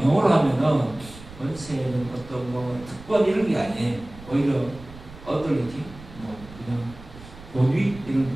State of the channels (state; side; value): noise; right; rumble, 18 dB below the sound